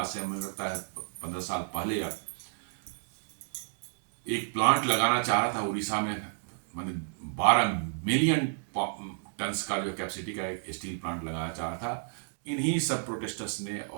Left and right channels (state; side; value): silent; left; digital silence